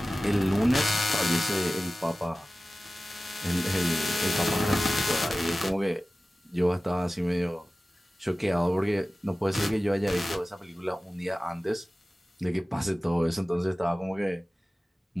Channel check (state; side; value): normal; both; correlation 0.96